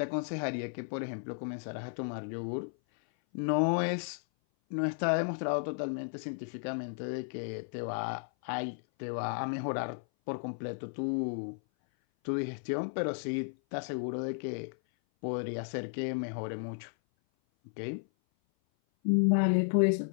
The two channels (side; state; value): right; silent; 55 dB below the other